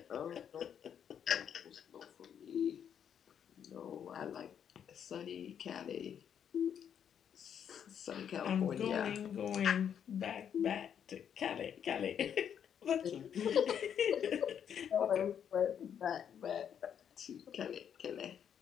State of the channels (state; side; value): quieter; right; 8.5 dB